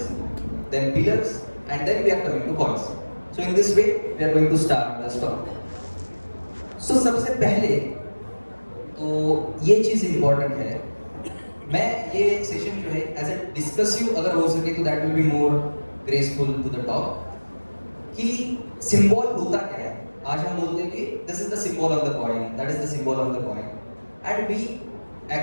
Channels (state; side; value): inverted; both; correlation -1.00